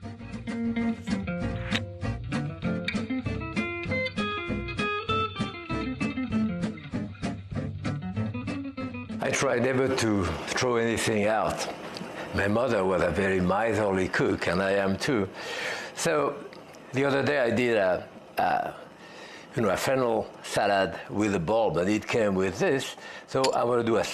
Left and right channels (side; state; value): both; identical; correlation 1.00